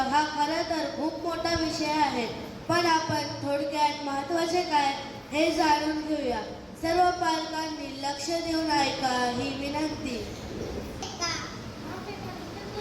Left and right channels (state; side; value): identical; both; correlation 1.00